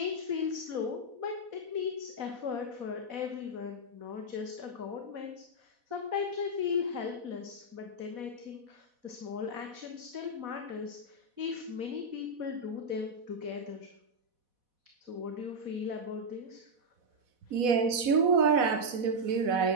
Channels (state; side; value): late; left; 4.1 ms